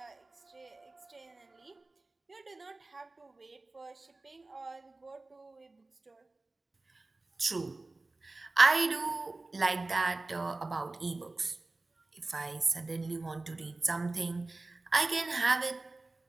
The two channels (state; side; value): quieter; left; 3.2 dB